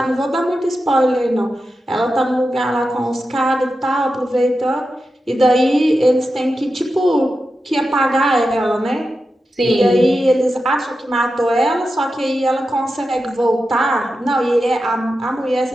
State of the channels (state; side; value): normal; both; correlation 0.91